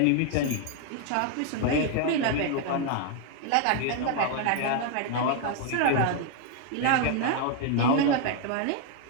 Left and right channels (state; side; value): different; both; correlation 0.00